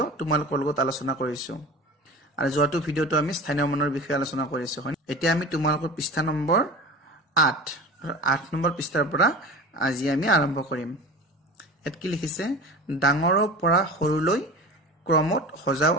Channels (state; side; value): normal; both; correlation 0.34